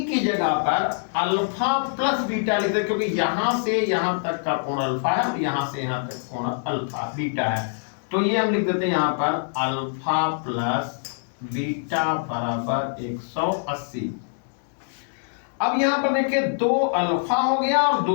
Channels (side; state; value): right; silent; digital silence